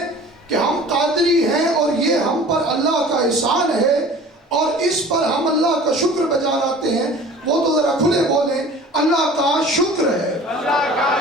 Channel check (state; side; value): normal; both; correlation 0.44